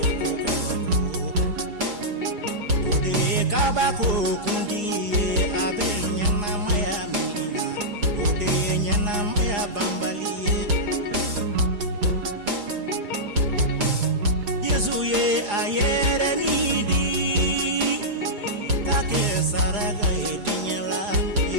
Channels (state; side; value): late; left; 4.9 ms